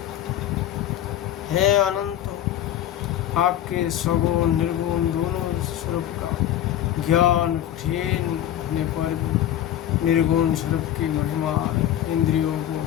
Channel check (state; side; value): quieter; right; 11.6 dB